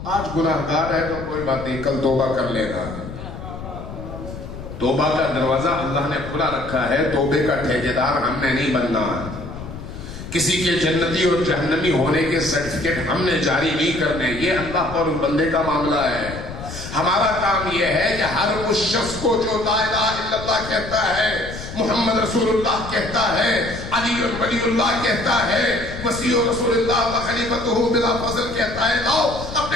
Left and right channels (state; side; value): noise; left; rumble, 11 dB below the sound